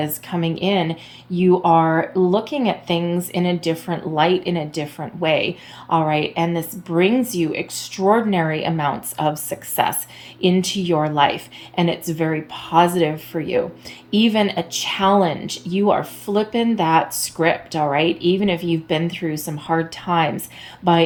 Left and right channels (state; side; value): identical; both; correlation 1.00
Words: coming in. You are looking at things in a different light, in a different way. All right. And this brings you extraordinary amounts of success into your life. And it's very positive for you. Even a challenge, you are flipping that script. All right. Even if you've been through some hard times, by